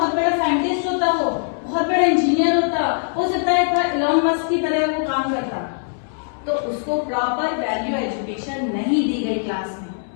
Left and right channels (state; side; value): silent; right; 59 dB below the other